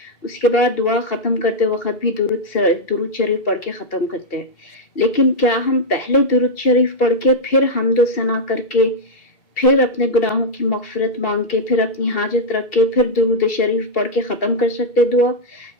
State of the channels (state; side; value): late; right; 2.0 ms